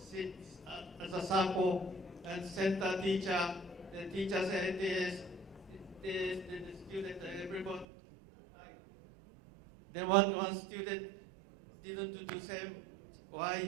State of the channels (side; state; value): left; drops out; at 7.9 s